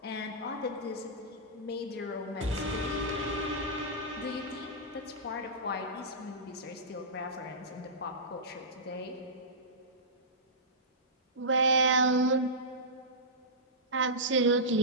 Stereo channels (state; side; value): normal; both; correlation -0.16